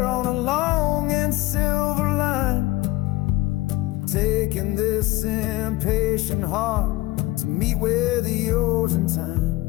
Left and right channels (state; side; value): quieter; right; 19.1 dB